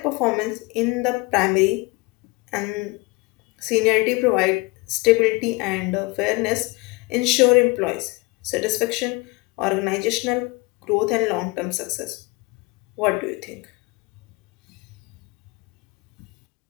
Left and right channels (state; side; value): quieter; right; 24.9 dB